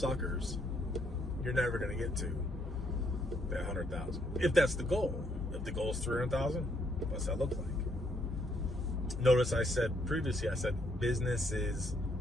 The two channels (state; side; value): normal; both; correlation 0.71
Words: you're never going to get to that 100,000. If that's the goal. If the goal is 300,000, what's that look like? Notice I said previously, business is